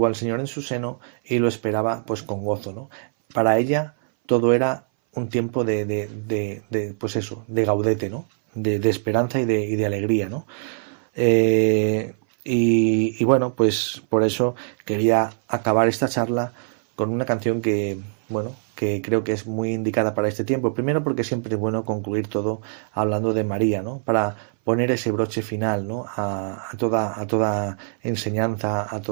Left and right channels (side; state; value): left; silent; 60 dB below the other